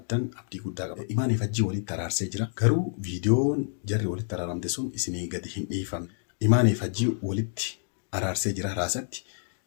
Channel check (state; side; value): silent; right; digital silence